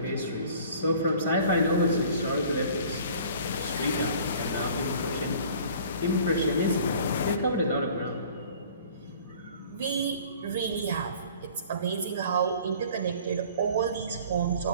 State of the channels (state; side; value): inverted; both; correlation -0.49